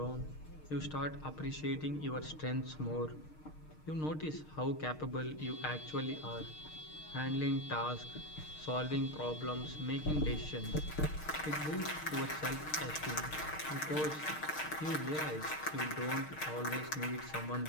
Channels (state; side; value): late; right; 6.5 ms